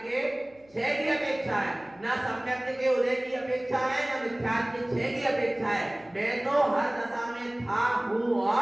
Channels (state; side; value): noise; left; hum, 30 dB below the sound